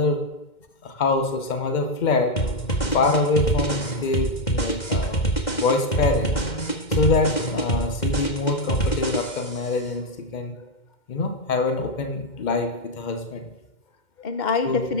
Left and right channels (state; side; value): late; right; 2.1 ms